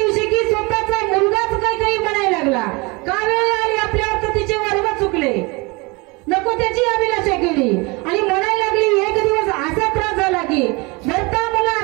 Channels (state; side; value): quieter; left; 26.8 dB